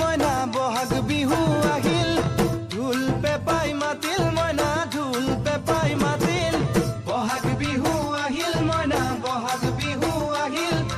মইনা বহাগ বিহু আহিল ঢোল পেপাই মাতিল মইনা ঢোল পেপাই মাতিল বহাগ বিহু আহিল মইনা বহাগ বিহু আহিল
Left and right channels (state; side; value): identical; both; correlation 1.00